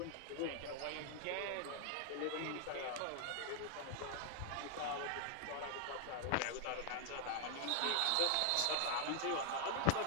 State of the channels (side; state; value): both; different; correlation 0.00